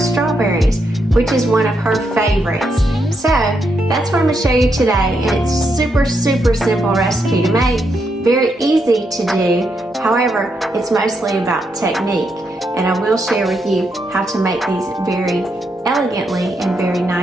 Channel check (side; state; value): both; normal; correlation 0.80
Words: strawberries, which is one of her favorites. So that's what I'm gonna show you today. And it's super, super simple recipe to make, very easy to do. However, it's mostly about technique. And I will share with you how to make these very elegantly and very